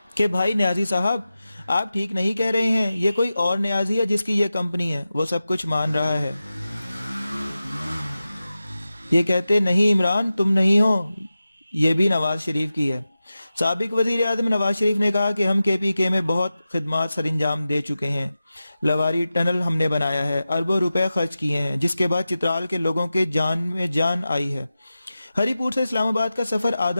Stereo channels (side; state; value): both; inverted; correlation -0.94